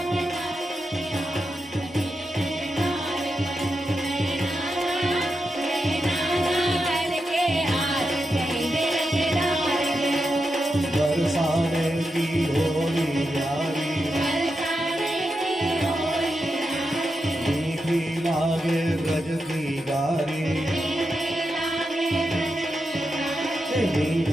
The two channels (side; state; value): both; normal; correlation 0.87